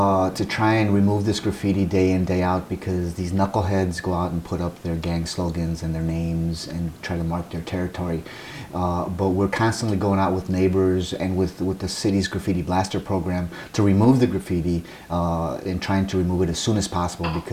try and remove this graffiti day in, day out, because these knuckleheads go out and put up their gang slogans and their names and try to mark their territory. But we're constantly going out with neighbors and with the city's graffiti blaster program to remove the graffiti and trying to remove it as soon as possible,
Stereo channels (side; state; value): both; identical; correlation 1.00